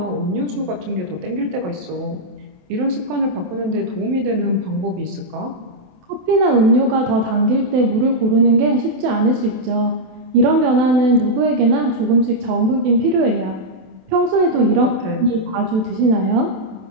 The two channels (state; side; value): late; left; 27 ms